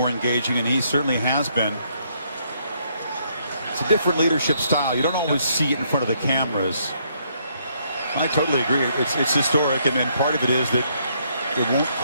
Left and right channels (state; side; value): inverted; both; correlation -0.71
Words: engaging, and he certainly has been. It's a different leadership style. You don't always see it in front of the cameras. I totally agree. It's historic, and part of it is that it won't